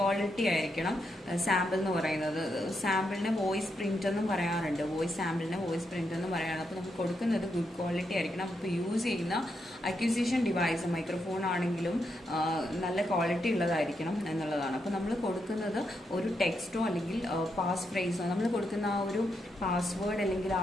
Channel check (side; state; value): both; normal; correlation 0.81